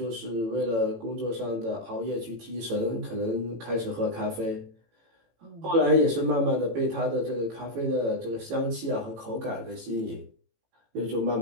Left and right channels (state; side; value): late; left; 18 ms